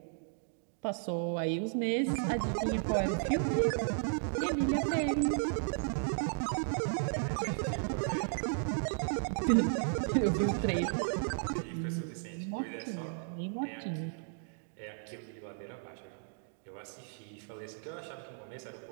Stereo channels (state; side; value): silent; left; digital silence